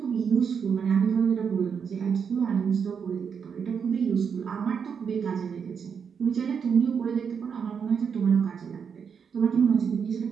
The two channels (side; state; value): left; quieter; 6.7 dB